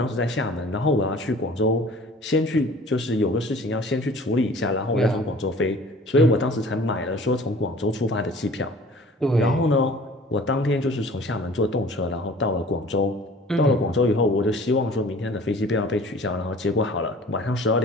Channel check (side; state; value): both; normal; correlation 0.47